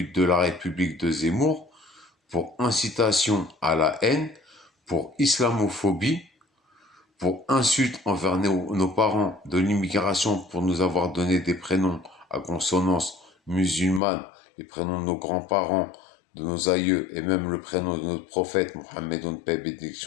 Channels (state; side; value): drops out; right; at 14.0 s